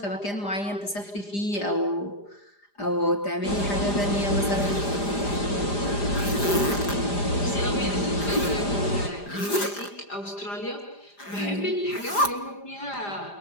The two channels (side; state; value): right; late; 5.0 ms